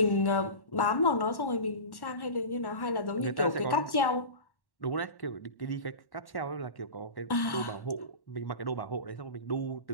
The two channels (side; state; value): right; late; 1.1 ms